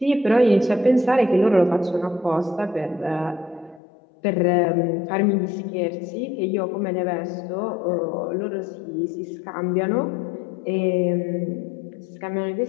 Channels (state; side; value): drops out; right; at 3.8 s